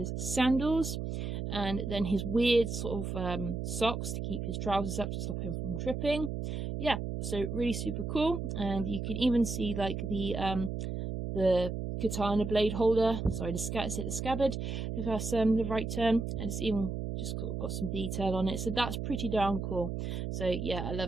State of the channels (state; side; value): noise; right; hum, 4 dB below the sound